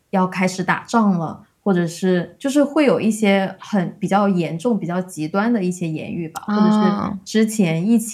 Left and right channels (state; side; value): identical; both; correlation 1.00